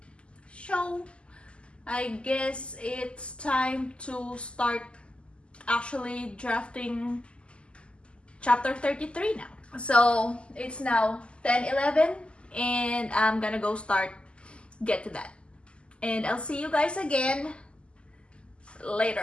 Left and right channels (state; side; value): late; right; 0.053 ms